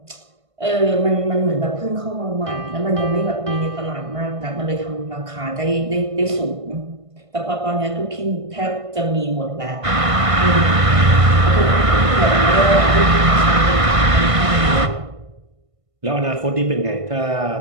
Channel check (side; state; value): left; late; 1.5 ms